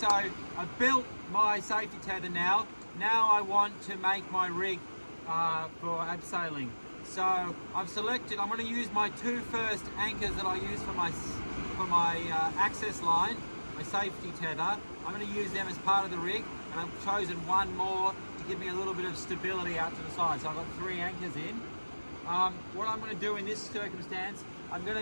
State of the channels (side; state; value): both; inverted; correlation -1.00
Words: I've built my safety tether now. Now I want to make my rig for abseiling. So I've selected, I'm going to use my two first anchors that I use for my access line, my safety tether. I'm going to use them as part of the rig, and I've chosen one more to give me a little bit of stability out to the side. So I've got 3 anchors in. What I'm going to do in this circumstance, I've